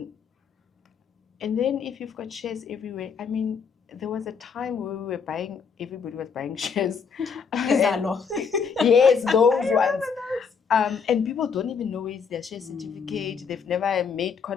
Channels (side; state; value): right; quieter; 6.0 dB